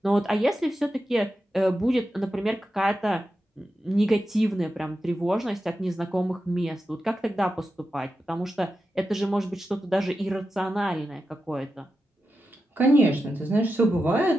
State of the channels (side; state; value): both; normal; correlation 0.90